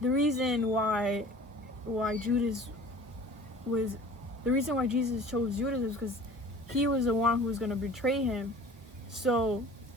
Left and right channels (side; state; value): both; normal; correlation 0.45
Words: reason why Jesus chose Judas was because he was the one who was gonna betray him. So